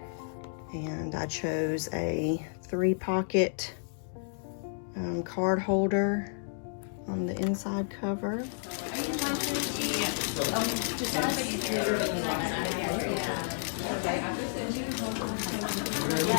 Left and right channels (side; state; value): right; silent; digital silence